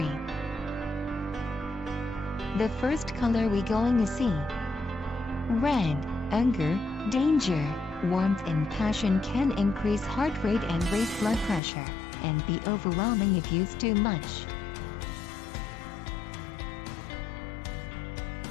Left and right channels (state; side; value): drops out; right; at 11.6 s